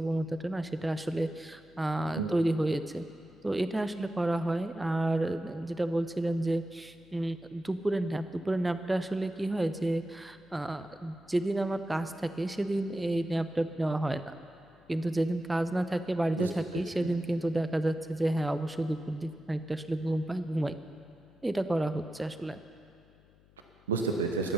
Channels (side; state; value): left; noise; hum, 28 dB below the sound